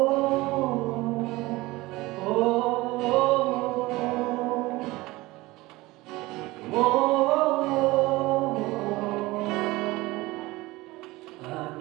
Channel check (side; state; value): left; quieter; 20.4 dB